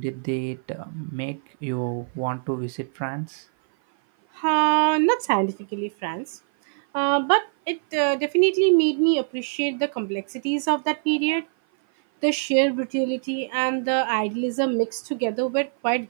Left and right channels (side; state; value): left; silent; 56 dB below the other